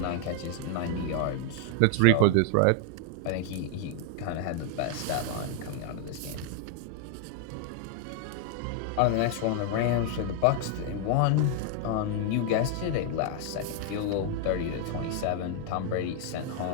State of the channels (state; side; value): different; both; correlation 0.00